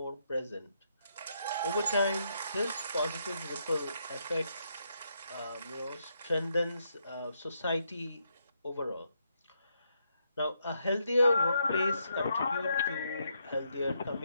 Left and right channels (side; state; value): both; inverted; correlation -0.78